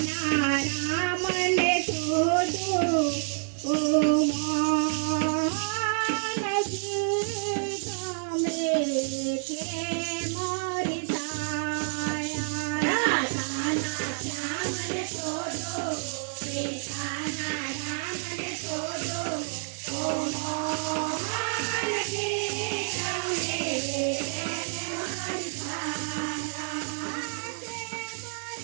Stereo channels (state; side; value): silent; left; digital silence